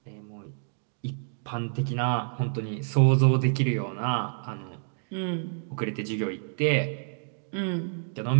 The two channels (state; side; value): silent; left; digital silence